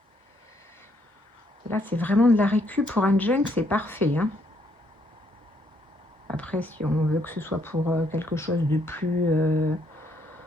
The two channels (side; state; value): both; normal; correlation 0.71